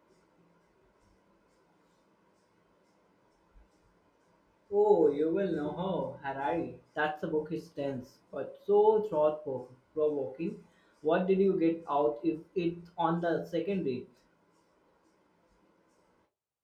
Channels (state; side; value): identical; both; correlation 1.00